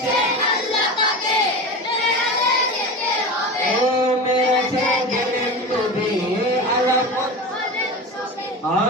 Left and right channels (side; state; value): both; normal; correlation 0.28